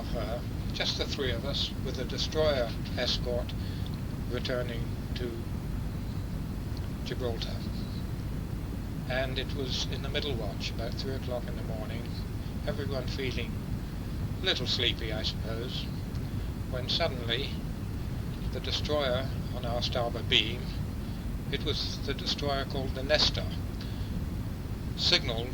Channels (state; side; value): identical; both; correlation 1.00